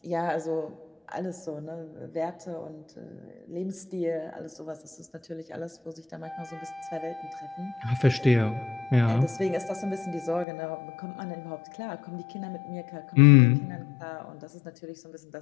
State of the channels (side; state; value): right; drops out; at 10.5 s